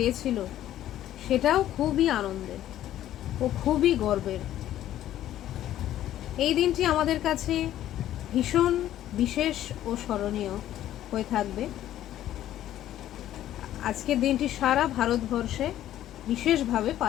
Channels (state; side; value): quieter; right; 12.6 dB